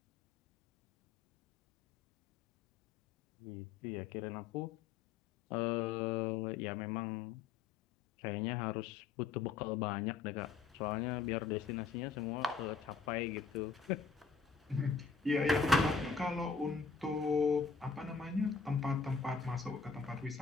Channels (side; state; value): right; quieter; 5.2 dB